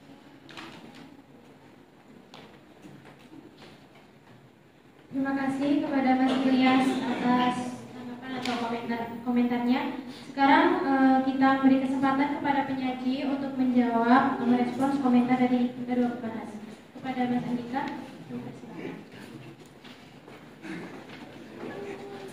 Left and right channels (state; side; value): identical; both; correlation 1.00